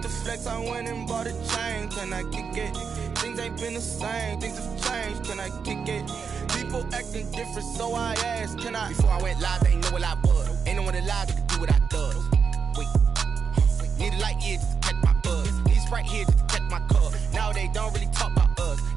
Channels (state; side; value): quieter; left; 6.0 dB